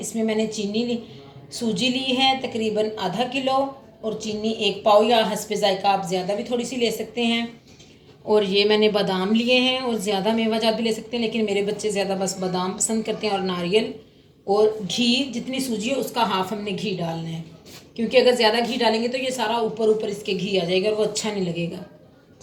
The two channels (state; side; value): identical; both; correlation 1.00